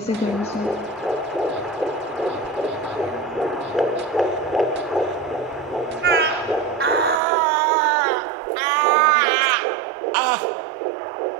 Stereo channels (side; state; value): left; drops out; at 7.2 s